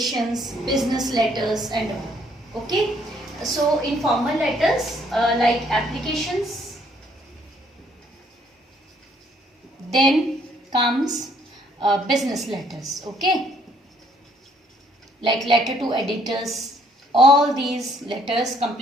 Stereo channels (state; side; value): normal; both; correlation 0.65